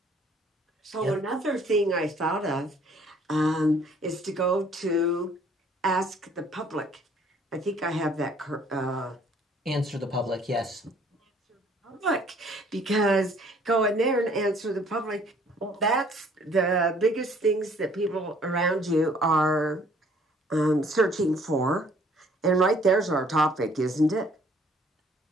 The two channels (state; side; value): normal; both; correlation 0.59